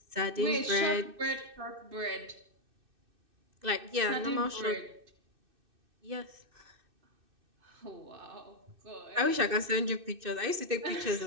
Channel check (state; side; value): late; left; 2.6 ms